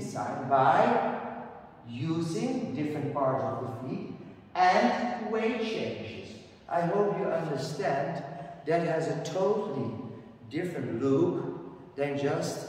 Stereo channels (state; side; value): identical; both; correlation 1.00